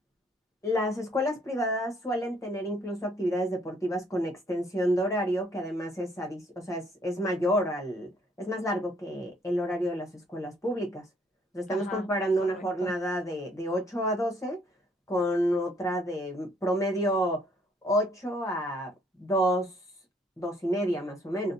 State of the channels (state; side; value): normal; both; correlation 0.65